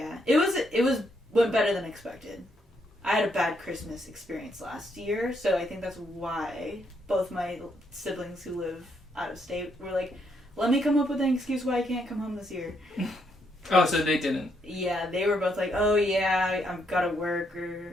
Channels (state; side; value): normal; both; correlation 0.75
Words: it was went better than expected. I had a bad Christmas experience last year, so I think that's why both my siblings who live out of state were like, let me come up with an excuse why I can't come home this year. Oh, so they didn't. Yeah, they were both like, oh yeah, I've got to work,